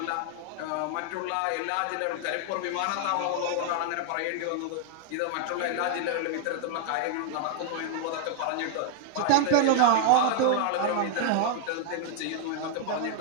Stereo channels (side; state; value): both; different; correlation 0.00